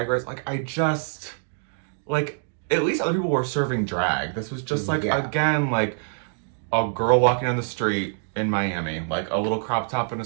Race, like I just like at least other people were serving drag. This was just like again like a girl walking down the street in Miami, like a little crop top and a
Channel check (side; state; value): left; silent; digital silence